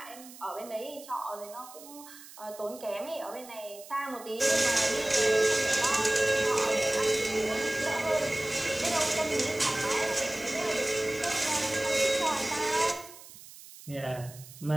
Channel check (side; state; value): right; noise; hiss, 18 dB below the sound